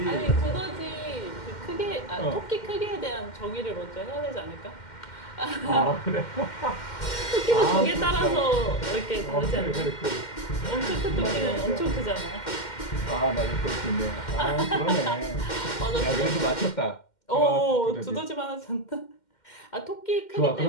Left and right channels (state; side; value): late; right; 2.1 ms